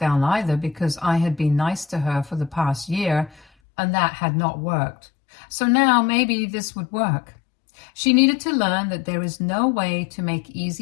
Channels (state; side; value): drops out; right; at 3.5 s